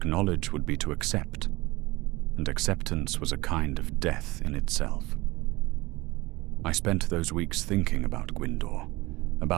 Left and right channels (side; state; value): left; quieter; 21.2 dB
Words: would be to accept, and acceptance was a kind of death in itself. I spent those weeks thinking about Gwindor,